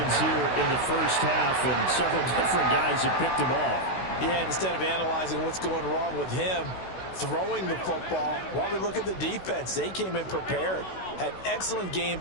here in the first half, and several different guys have picked them off. Yeah, instead of analyzing what's going wrong with him, throwing the football, while we look at the defense, they came in prepared, had excellent game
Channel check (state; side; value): late; right; 16 ms